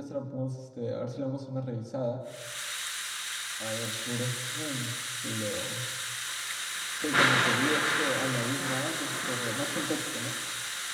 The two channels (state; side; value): identical; both; correlation 1.00